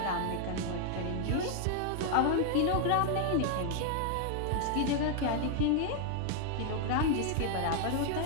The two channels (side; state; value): both; different; correlation 0.00